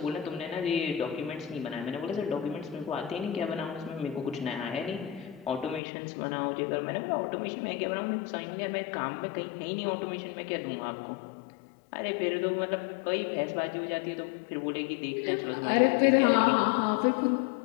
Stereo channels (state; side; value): drops out; right; at 5.8 s